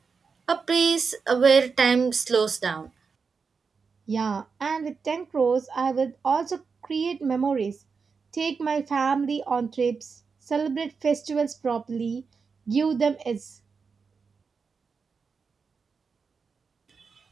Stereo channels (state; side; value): quieter; left; 5.2 dB